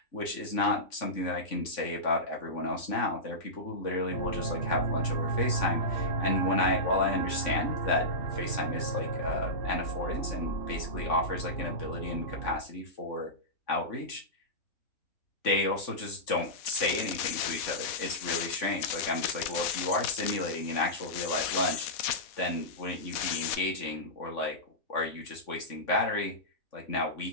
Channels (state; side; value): late; right; 3.5 ms